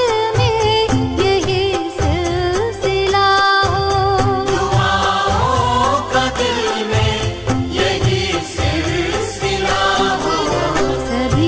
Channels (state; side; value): identical; both; correlation 1.00